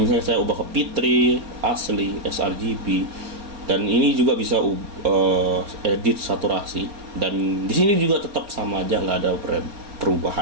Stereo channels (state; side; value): late; left; 4.3 ms